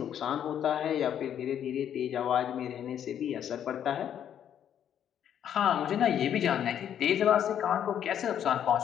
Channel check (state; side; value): quieter; right; 9.6 dB